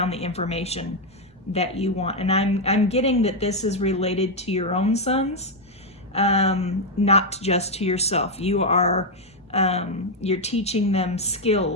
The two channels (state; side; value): normal; both; correlation 0.01